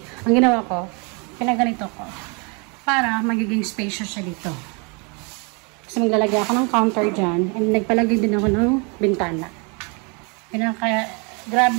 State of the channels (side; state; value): left; quieter; 32.7 dB